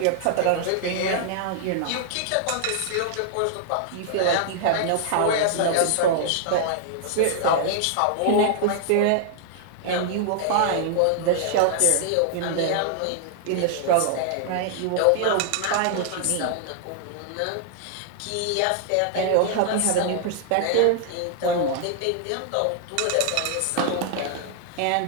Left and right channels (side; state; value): both; different; correlation -0.01